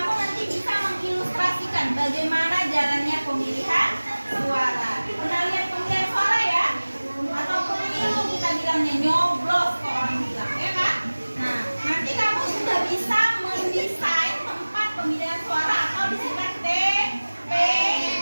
nanti bisa mengilustrasikan bagaimana jalannya pemilihan suara. Pernah lihat pemilihan suara ya? Atau pemilu kita bilangnya nyoblos kok orang bilang, ya kan? Nah, nanti kamu sudah bisa mendesain tempat pemilihan suara atau disingkat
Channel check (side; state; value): both; inverted; correlation -1.00